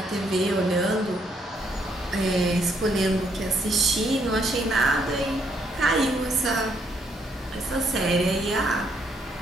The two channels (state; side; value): normal; both; correlation 0.72